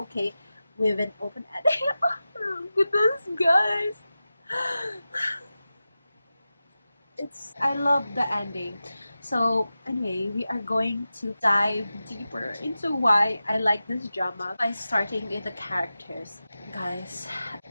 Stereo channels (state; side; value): inverted; both; correlation -0.94